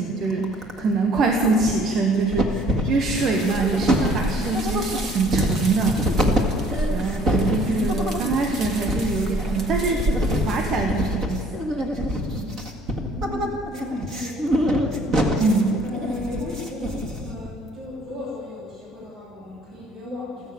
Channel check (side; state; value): both; normal; correlation 0.57